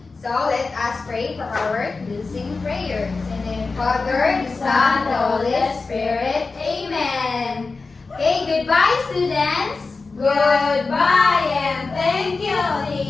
So let us pray for our closing prayers. In the name of the Father, the Son, the Holy Spirit. Amen. Okay, goodbye students. Goodbye and thank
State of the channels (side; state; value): right; quieter; 4.0 dB